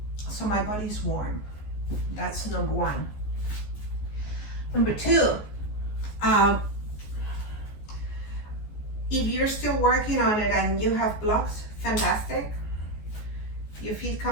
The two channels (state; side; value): late; right; 14 ms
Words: so my body's warm. That's number one. Number two, if you're still working on it and you have blocks, fantastic. Your feet